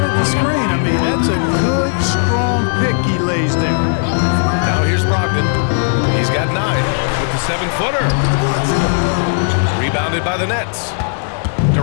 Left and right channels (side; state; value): right; silent; digital silence